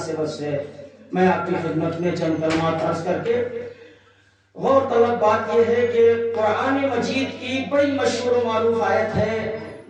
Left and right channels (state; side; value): identical; both; correlation 1.00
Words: سے میں آپ کی خدمت میں چند کلمات عرض کر کے غور طلب بات یہ ہے کہ قرآن مجید کی بڑی مشہور و معروف آیت ہے